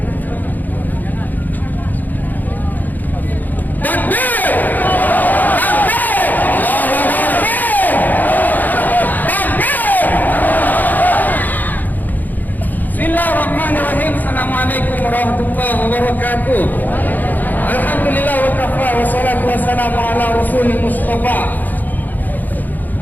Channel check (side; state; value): right; late; 0.084 ms